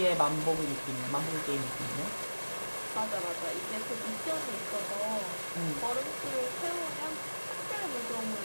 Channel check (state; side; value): inverted; both; correlation -1.00